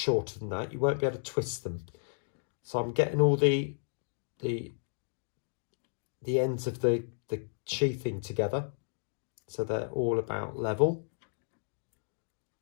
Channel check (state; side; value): silent; right; digital silence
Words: than that, you won't be able to twist them. So I'm getting all the ends of the sheathing together, so they're all about level,